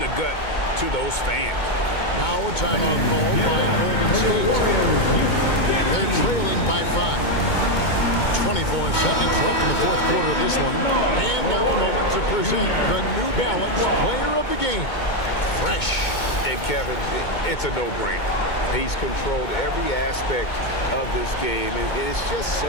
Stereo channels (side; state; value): right; late; 2.2 ms